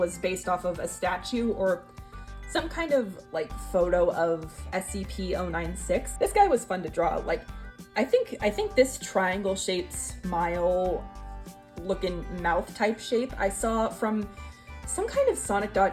based off of a statue or some kind of like photo of SCP-096. This guy was fun to draw. Like, I think this triangle shaped smile looking mouth type shape I saw from some kind of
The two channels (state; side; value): identical; both; correlation 1.00